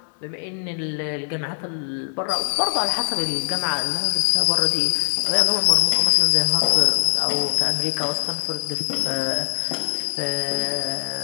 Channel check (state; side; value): silent; right; digital silence